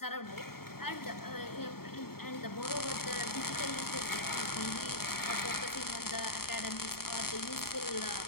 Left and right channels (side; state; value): right; late; 0.94 ms